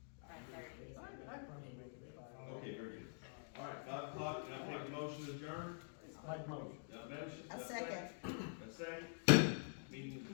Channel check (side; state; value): right; silent; digital silence